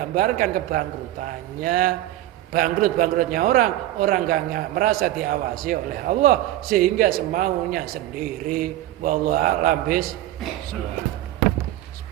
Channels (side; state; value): left; quieter; 14.6 dB